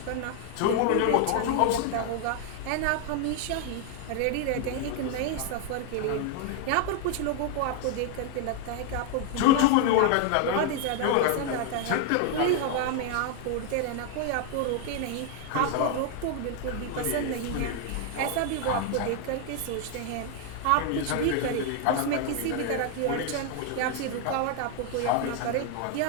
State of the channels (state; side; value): different; both; correlation 0.00